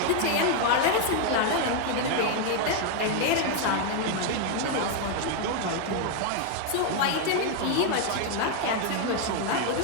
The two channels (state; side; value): different; both; correlation 0.00